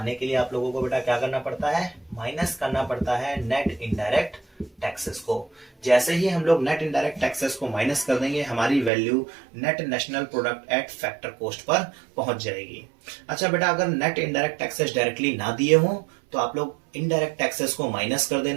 के लिए आप लोगों को बेटा क्या करना पड़ता है? माइनस करना पड़ता है नेट इनडायरेक्ट टैक्सेस को। जैसे ही हम लोग नेट इनडायरेक्ट टैक्सेस को माइनस कर देंगे, हमारी value net national product at factor cost per पहुंच जाएगी। अच्छा बेटा, अगर नेट इनडायरेक्ट टैक्सेस डायरेक्टली ना दिए हों तो आप लोग इनडायरेक्ट टैक्सेस को माइनस कर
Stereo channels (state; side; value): drops out; left; at 8.9 s